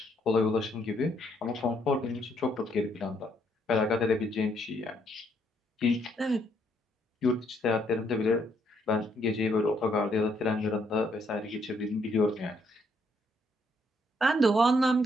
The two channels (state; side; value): normal; both; correlation 0.72